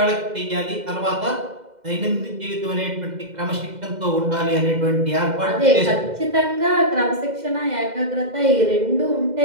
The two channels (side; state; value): left; late; 2.0 ms